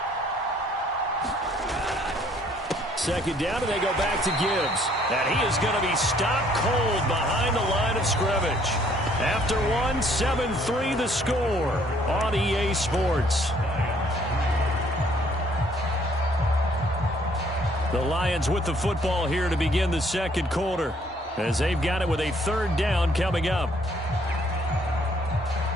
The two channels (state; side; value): normal; both; correlation 0.63